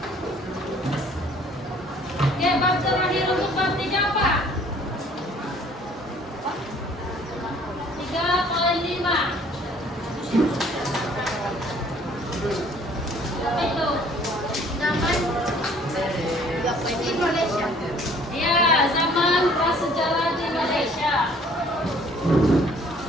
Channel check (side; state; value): both; normal; correlation 0.57